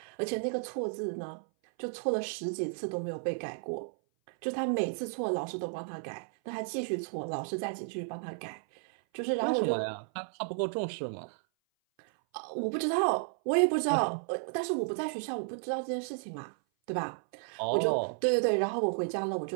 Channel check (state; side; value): silent; left; 56 dB below the other